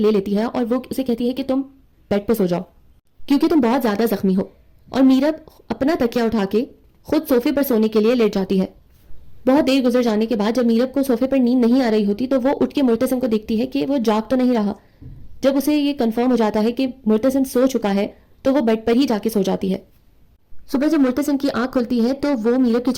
لیتی ہے اور وہ اسے کہتی ہے کہ تم بیڈ پہ سو جاؤ کیونکہ تم بہت زیادہ زخمی ہو، اور میرب اپنا تکیہ اٹھا کے خود صوفے پر سونے کے لیے لیٹ جاتی ہے۔ بہت دیر گزر جانے کے بعد جب میرب کو صوفے پر نیند نہیں آ رہی ہوتی تو وہ اٹھ کے مرتسم کو دیکھتی ہے کہ وہ جاگ تو نہیں رہا، جب اسے یہ کنفرم ہو جاتا ہے کہ مرتسم سو چکا ہے تو وہ بیڈ پر ہی جا کے سو جاتی ہے۔ صبح جب مرتسم کی آنکھ کھلتی ہے تو وہ میرب کے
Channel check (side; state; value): both; identical; correlation 1.00